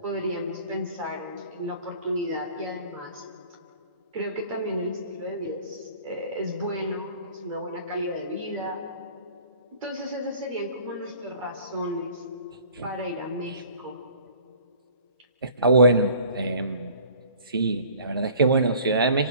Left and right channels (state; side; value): inverted; both; correlation -0.50